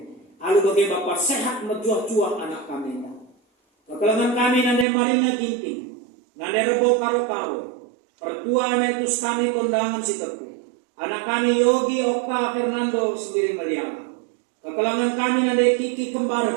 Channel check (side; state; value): left; drops out; at 4.9 s